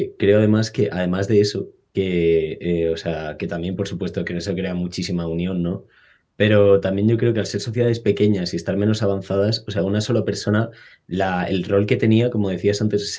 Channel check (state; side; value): identical; both; correlation 1.00